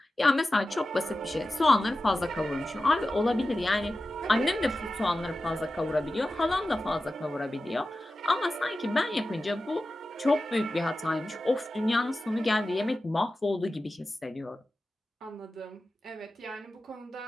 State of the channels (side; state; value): both; normal; correlation 0.94